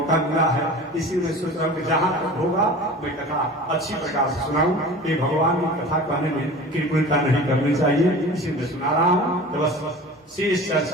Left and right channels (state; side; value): normal; both; correlation 0.38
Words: मिला है, इसी में सोच रहा हूँ कि जहां तक होगा मैं कथा अच्छी प्रकार से सुनाऊं। ये भगवान की कथा कहने में कृपणता नहीं करनी चाहिए, इसी में सुना रहा हूँ। तो बस शेष